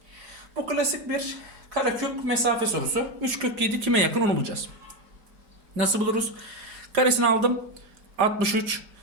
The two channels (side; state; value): left; late; 4.8 ms